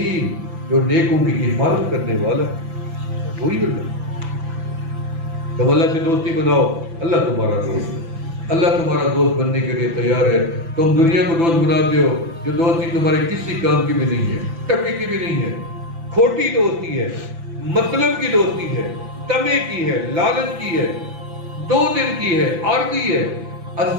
جو نیکوں کی حفاظت کرنے والا ہے، وہی اللہ۔ تم اللہ سے دوستی بناؤ، اللہ تمہارا دوست ہے۔ اللہ تمہارا دوست بننے کے لیے تیار ہے۔ تم دنیا کو دوست بناتے ہو، جو دوستی تمہارے کسی کام کی بھی نہیں ہے، ٹکے کی بھی نہیں ہے، کھوٹی دوستی ہے، مطلب کی دوستی ہے، تمے کی ہے، لالچ کی ہے، 2 دن کی ہے، عارضی ہے۔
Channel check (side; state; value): left; late; 6.0 ms